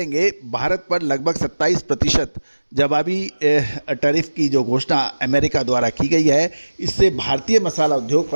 भारत पर लगभग 27% जवाबी टैरिफ की जो घोषणा अमेरिका द्वारा की गई है, इससे भारतीय मसाला उद्योग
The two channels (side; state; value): both; inverted; correlation -1.00